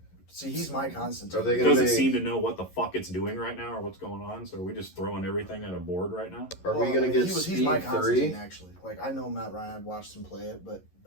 he's my Constantine. Are they gonna doesn't make, seem to know what the fuck it's doing right now or what's going on, so are we just throwing everything at a board right now? Are we gonna get he's Speed my 3? Constantine, actually. Like, I know Matt Ryan, I've watched him play it, but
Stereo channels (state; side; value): late; right; 11 ms